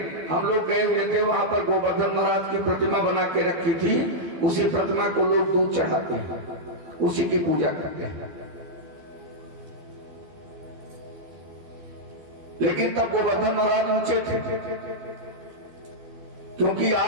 हम लोग गए हुए थे, वहां पर गोवर्धन महाराज की प्रतिमा बना के रखी थी, उसी प्रतिमा को लोग दूध चढ़ाते हैं, उसी की पूजा करते हैं। लेकिन तब गोवर्धन महाराज ऊंचे थे, क्योंकि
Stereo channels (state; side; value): late; left; 12 ms